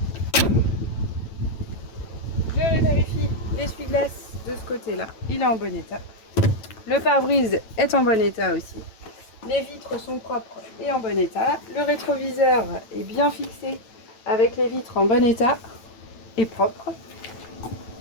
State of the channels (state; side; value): late; right; 9.0 ms